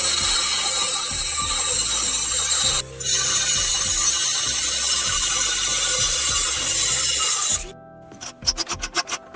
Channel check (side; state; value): both; identical; correlation 1.00